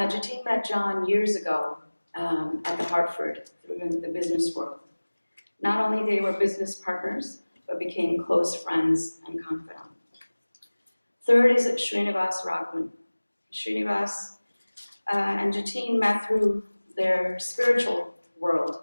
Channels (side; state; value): both; inverted; correlation -1.00